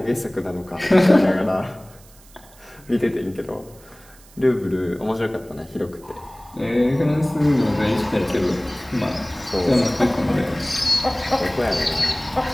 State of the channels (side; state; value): right; noise; hiss, 25 dB below the sound